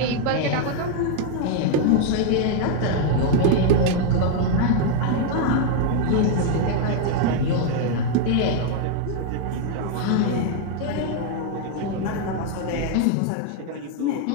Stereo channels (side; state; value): both; different; correlation 0.01